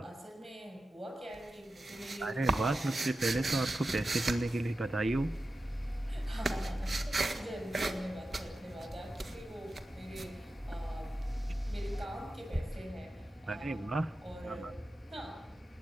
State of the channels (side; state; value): both; normal; correlation 0.92